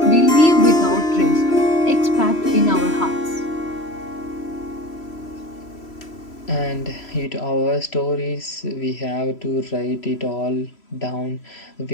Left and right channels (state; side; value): late; right; 3.0 ms